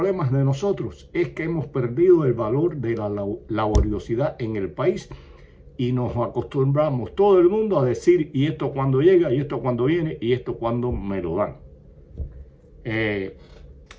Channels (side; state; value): both; identical; correlation 1.00